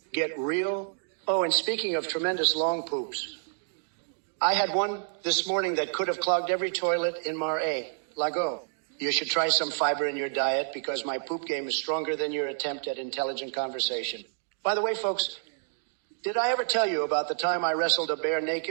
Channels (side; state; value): left; silent; digital silence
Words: get real. Oh, and speaking of tremendous long poops, I had one this morning that could have clogged every toilet in Marais. Lago. You should try some fiber in your diet, because my poop game is stronger than your attempt at intelligent conversation. By the way, folks, did I ever tell you about the time I wrestled a bear